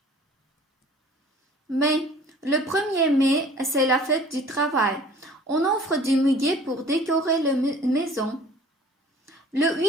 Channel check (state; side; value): normal; both; correlation 0.49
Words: Mai. Le 1er mai, c'est la fête du travail. On offre du muguet pour décorer la maison. Le